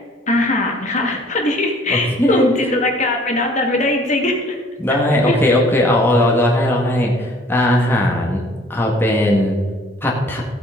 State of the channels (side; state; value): both; normal; correlation 0.55